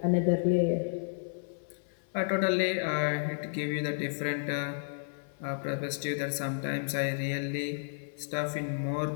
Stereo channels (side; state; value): right; silent; 57 dB below the other